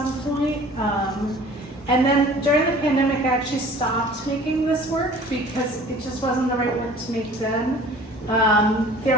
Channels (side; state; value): both; normal; correlation 0.47